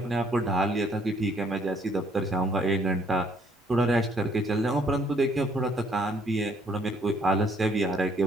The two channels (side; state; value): both; normal; correlation 0.64